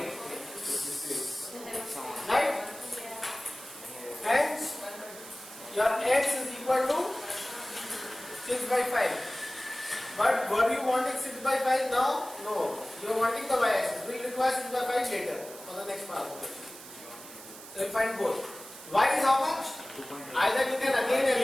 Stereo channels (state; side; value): noise; right; hiss, 15 dB below the sound